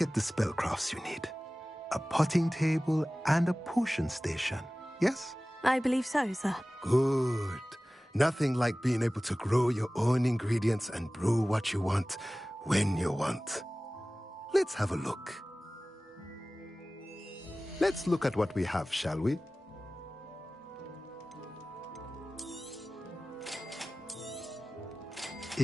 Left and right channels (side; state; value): both; normal; correlation 0.97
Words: the spellcrafts you need. A potting table and a potion station, yes? I believe so, sir. Good. Nothing like being able to grow your own ingredients and brew what you want when you want. Let's have a look. Let's look at what we have, shall we?